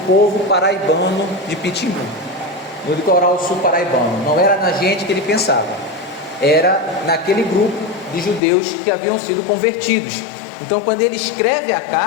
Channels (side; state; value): right; drops out; at 8.4 s